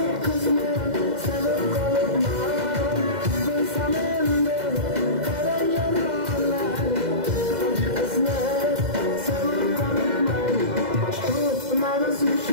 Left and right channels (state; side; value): late; left; 2.0 ms